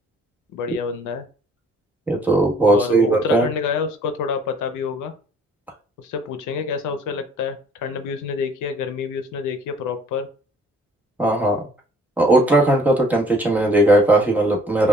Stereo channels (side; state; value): both; normal; correlation 0.57